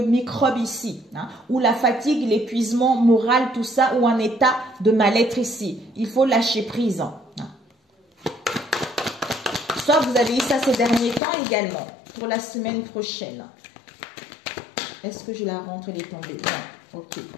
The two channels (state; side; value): drops out; right; at 11.2 s